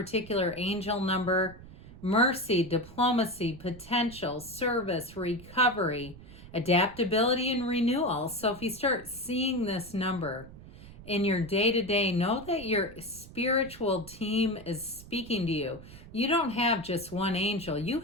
angel number: mercy, diplomacy, potential, service, recovery, adaptability, and renewal. So if you start seeing this number in your day-to-day, know that your spiritual team is speaking to you. You don't have just one angel. You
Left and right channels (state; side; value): noise; right; rumble, 17 dB below the sound